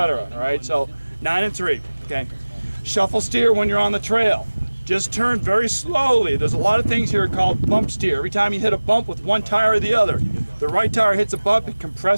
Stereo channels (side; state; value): both; inverted; correlation -1.00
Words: All right, so 9 and 3. Okay, shuffle steer when you're on the trail. Just turn very slowly. There's a lot of things here called bump steer. Every time you hit a bump with one tire or the other, the right tire hits a bump, it